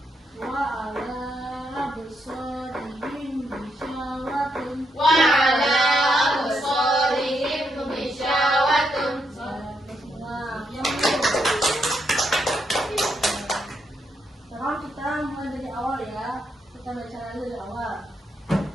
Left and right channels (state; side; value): normal; both; correlation 0.79